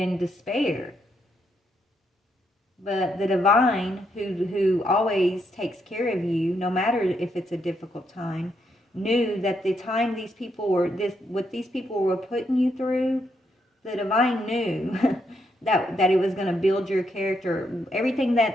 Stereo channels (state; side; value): normal; both; correlation 0.78